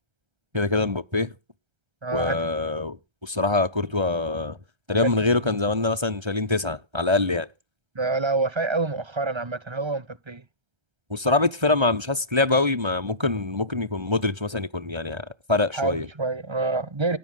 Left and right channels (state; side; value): late; left; 1.3 ms